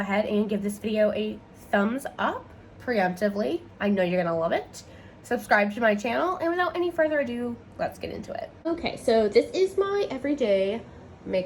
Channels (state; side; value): identical; both; correlation 1.00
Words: and give this video a thumbs up preemptively. I know you're gonna love it. Subscribe to my channel, and without any further ado, let's get into it. Okay, so this is my everyday